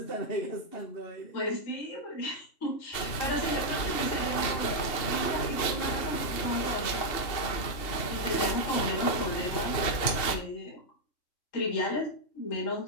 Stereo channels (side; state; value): right; late; 2.8 ms